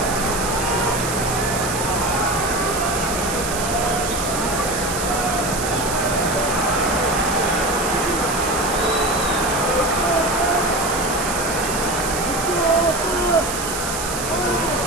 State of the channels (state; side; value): noise; right; hiss, 5 dB below the sound